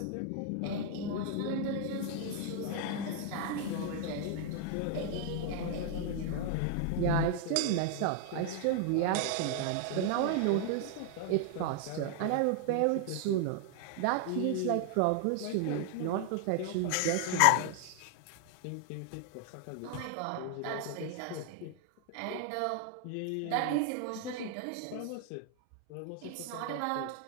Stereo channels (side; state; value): both; different; correlation 0.00